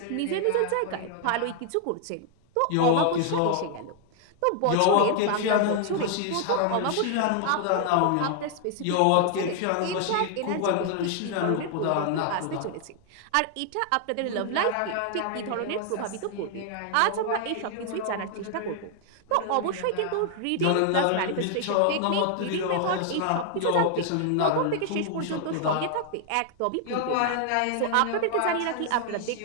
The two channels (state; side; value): different; both; correlation 0.00